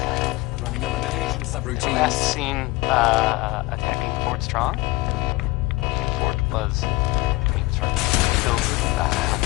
Running elimination subroutines. Last seen attacking Fort Strong. Fort was filled with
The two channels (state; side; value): quieter; right; 21.2 dB